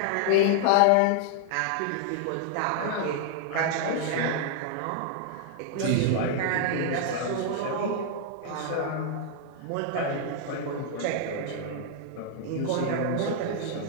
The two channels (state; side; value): different; both; correlation 0.00